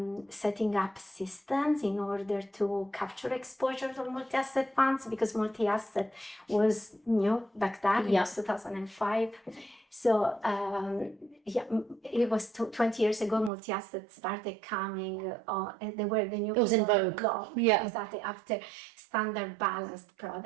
setting up systems in order to capture exposure to multi-asset funds, because multi-asset was new back then. It was 2005. So it was 20 years ago, multi-asset started coming, and they were the new. It was in vogue. Yeah, exactly, after standard balanced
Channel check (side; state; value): left; drops out; at 13.5 s